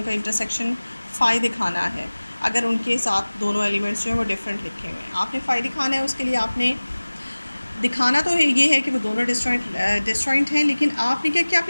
इंटरसेक्शन फाई दिखाना है अगर उनके साथ दोनों एलिमेंट्स जो हैं वो डिफरेंट लिखे हुए हैं। आपने फाई दिखाना है, उसके लिए आपने दिखाना तो है ये है कि वो दोनों डिसजॉइंट हैं, लेकिन आपने क्या किया,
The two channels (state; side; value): inverted; both; correlation -1.00